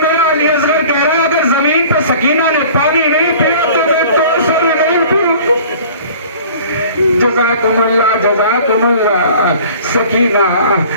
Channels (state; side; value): inverted; both; correlation -0.47